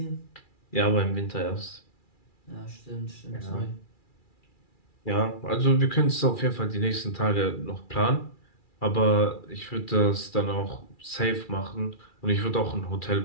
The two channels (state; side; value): late; right; 2.3 ms